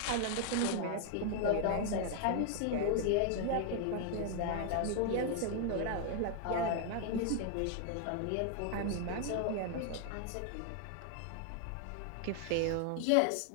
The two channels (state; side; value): different; both; correlation 0.00